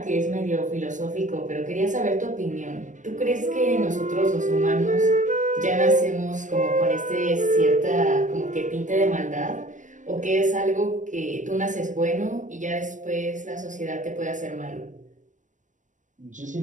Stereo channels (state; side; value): late; left; 0.37 ms